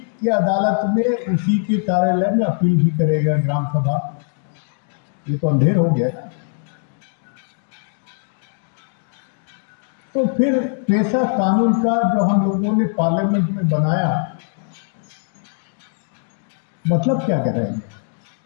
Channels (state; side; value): silent; right; 63 dB below the other